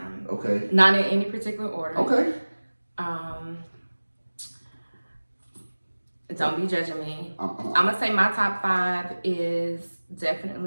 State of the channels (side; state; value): both; inverted; correlation -1.00